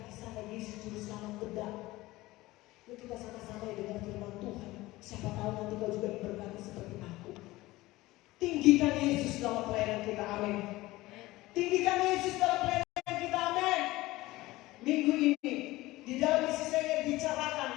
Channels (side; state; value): right; quieter; 18.8 dB